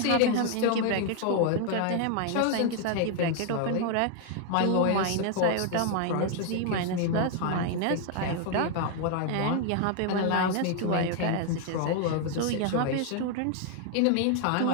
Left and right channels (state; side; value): different; both; correlation 0.00